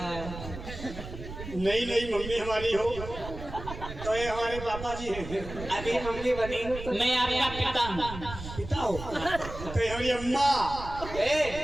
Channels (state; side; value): noise; right; rumble, 10 dB below the sound